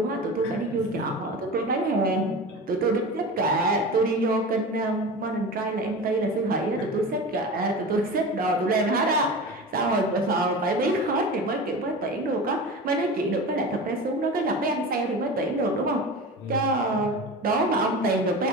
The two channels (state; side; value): normal; both; correlation 0.31